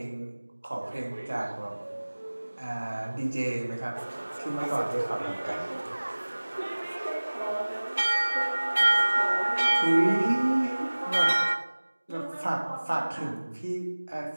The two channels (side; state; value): both; inverted; correlation -1.00